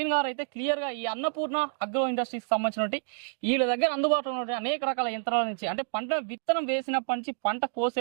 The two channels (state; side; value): silent; left; digital silence